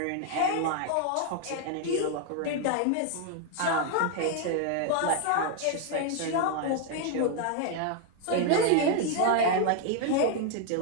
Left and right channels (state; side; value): different; both; correlation 0.00